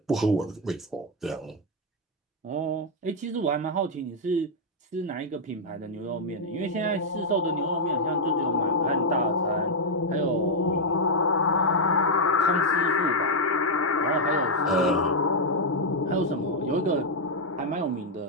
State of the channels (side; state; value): both; normal; correlation -0.01